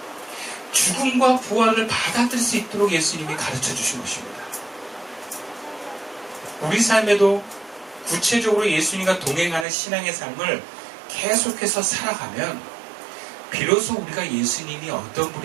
죽음과 부활을 받아들일 수 있도록 예수님이 가르쳐 주신 것입니다. 우리 삶에도 구체적으로 예수님과 동행하는 신앙의 삶을 계속해서 살아가면 비로소 우리가 예수님이 어떤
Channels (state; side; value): drops out; left; at 9.7 s